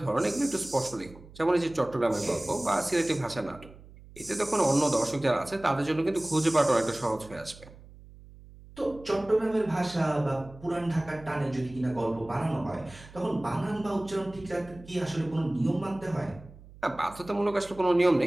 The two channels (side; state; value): right; noise; hum, 20 dB below the sound